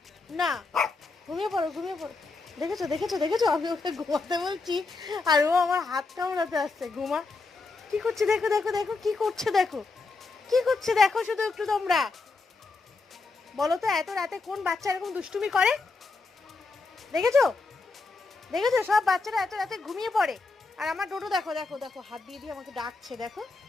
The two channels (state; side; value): quieter; right; 3.9 dB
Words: না, ঘুমিয়ে পড়ো ঘুমিয়ে পড়ো। দেখেছো দেখেছো দেখেছো, আমি ওকে ঘুমাতে বলছি আর ও আমার হাত কামড়াতে আসছে। ঘুমা। কি করছে দেখো দেখো দেখো, কি করছে দেখো, কি করছে দেখো শুধু একটু তোমরা। বলো তো এত রাতে কোন বাচ্চা এরকম দুষ্টুমি করে? দেখেছো দেখেছো, সব বাচ্চারা এত রাতে ঘুমিয়ে পড়ে। আর আমার ডোডো দেখো দেখো দেখো, হাত দিয়ে দিয়ে আমাকে ডাকছে, দেখো